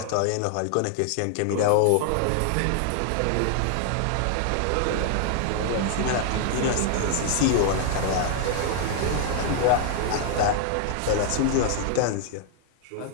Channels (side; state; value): both; different; correlation 0.00